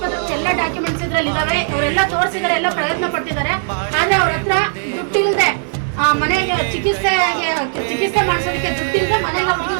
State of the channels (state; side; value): silent; left; 65 dB below the other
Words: ಎಲ್ಲ ಡಾಕ್ಯುಮೆಂಟ್ಸ್ ಇದ್ರಲ್ಲಿ ಇದಾವೆ. ಅವರೆಲ್ಲ ತೋರಿಸಿದ್ದಾರೆ, ಎಲ್ಲ ಪ್ರಯತ್ನ ಪಟ್ಟಿದ್ದಾರೆ. ಆದ್ರೆ ಅವ್ರ ಹತ್ರ ದುಡ್ಡಿಲ್ಲದೆ ಮನೆಗೆ ಚಿಕಿತ್ಸೆ ಮಾಡಿಸೋದಕ್ಕೆ ದುಡ್ಡಿಲ್ಲದೆ